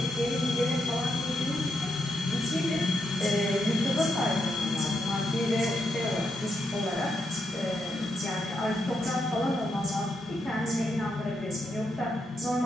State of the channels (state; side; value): normal; both; correlation 0.81